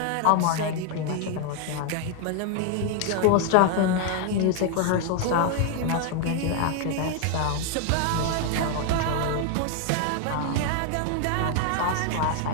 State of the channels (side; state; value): both; different; correlation 0.00